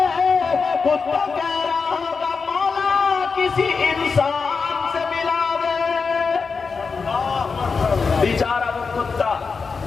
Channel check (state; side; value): quieter; right; 5.0 dB